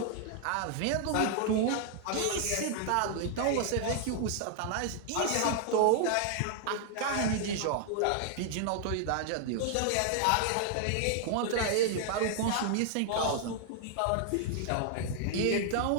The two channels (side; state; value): both; different; correlation 0.00